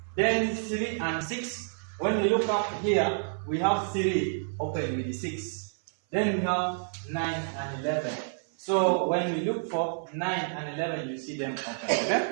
Then 3 and 6. When we look up here, we have 3 open with the 6. Then we have 9 and 11. So when we look for 9 and 11, you see them open.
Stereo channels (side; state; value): left; silent; 59 dB below the other